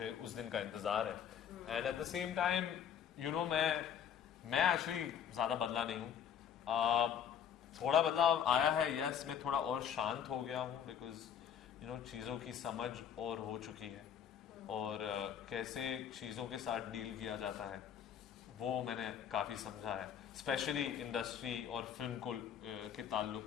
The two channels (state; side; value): quieter; right; 8.6 dB